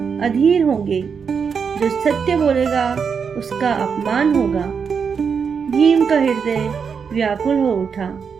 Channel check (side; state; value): left; quieter; 6.3 dB